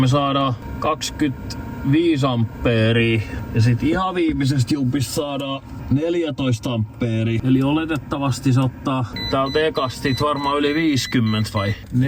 saadaan 25 ampeeria. Ja sit ihan viimeisestä jumpista saadaan 14 ampeeria. Eli oletettavasti se ottaa täältä ekasti varmaan yli 50 vai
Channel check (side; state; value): both; identical; correlation 1.00